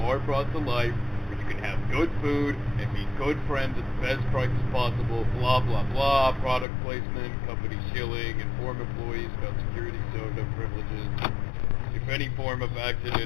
are brought to life, where you can have good food and meet good friends at the best prices possible, blah blah blah, product placement, company shilling, inform employees about security soda privileges. If any form of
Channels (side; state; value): right; drops out; at 6.7 s